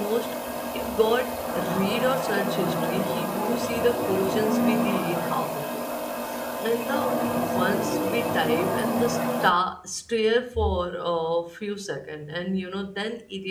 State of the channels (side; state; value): both; identical; correlation 1.00